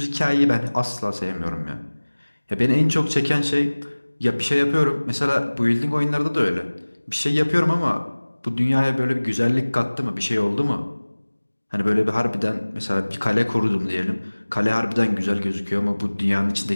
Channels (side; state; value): both; inverted; correlation -1.00